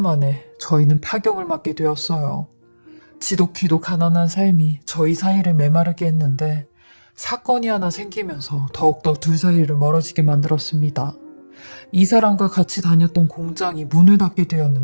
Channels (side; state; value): both; inverted; correlation -1.00